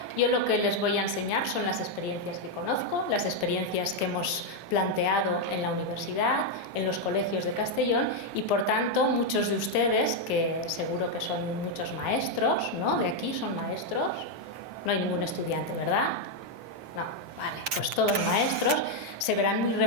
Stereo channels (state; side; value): late; left; 7.8 ms